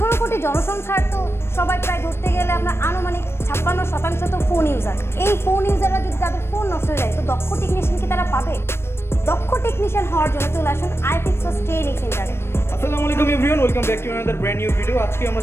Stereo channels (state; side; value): late; right; 0.12 ms